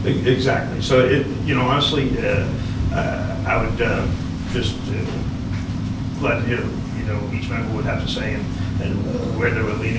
exactly. So, honestly, I would just glad to hear, each member would have to say and where they were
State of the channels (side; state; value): both; identical; correlation 1.00